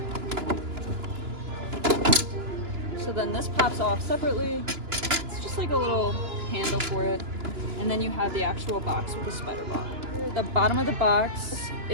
So then this pops off separately. It's just like a little handle for it. And then you have the actual box with the Spider Bot. The bottom of the box,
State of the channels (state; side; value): late; left; 2.9 ms